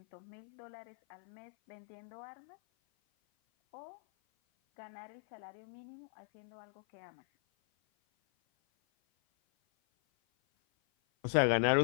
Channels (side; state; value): right; silent; 52 dB below the other